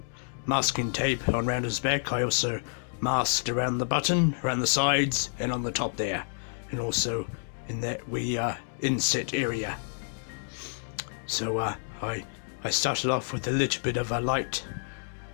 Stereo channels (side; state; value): right; silent; digital silence